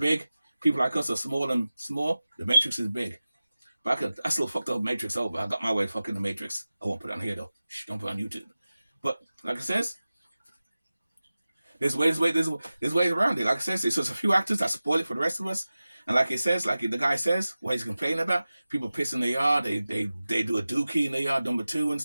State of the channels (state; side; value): inverted; both; correlation -0.96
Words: People like us are small and small. The matrix is big. But I still fucked up matrix over. I got my way fucking the matrix. I won't put it on here though. Shh, don't put it on YouTube. But like I says, there's ways around it. Like I says, it's just a few actors that spoil it for the rest of us. And like it says, like the guy says, what he's complaining about, people piss in the yard, they do a dookie in the yard, number 2 and